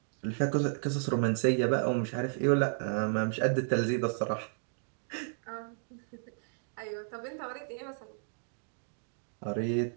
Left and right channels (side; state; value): left; silent; digital silence